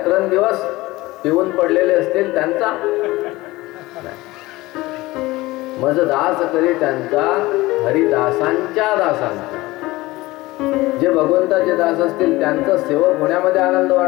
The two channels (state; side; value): quieter; right; 19.7 dB